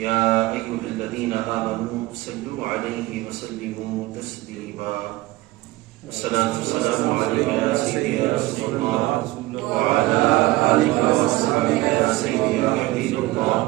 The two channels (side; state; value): left; quieter; 18.8 dB